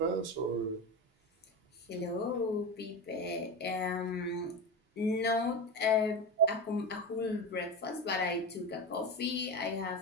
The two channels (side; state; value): both; normal; correlation 0.21